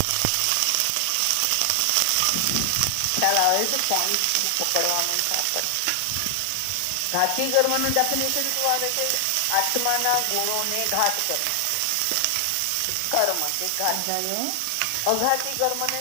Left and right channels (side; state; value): both; different; correlation 0.00